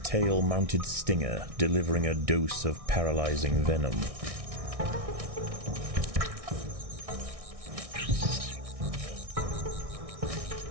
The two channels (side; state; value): left; late; 1.6 ms